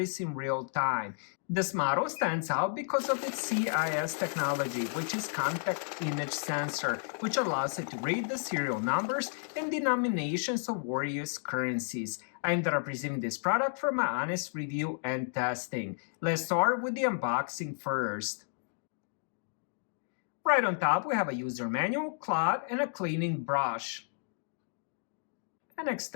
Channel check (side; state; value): right; silent; digital silence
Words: in real time. This model stands out because of its CIS technology, which is contact image sensor, which allows it to read the serial numbers and denominations of various currencies. I ended up receiving this product for my honest review and testing. Let's start with the unboxing first. Right on top, we have a user manual, cloth, and a cleaning brush. An